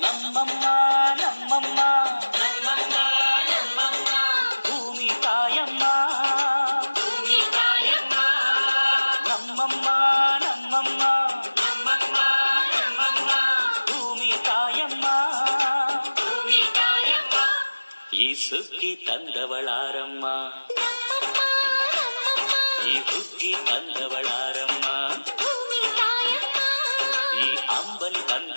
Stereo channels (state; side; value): inverted; both; correlation -1.00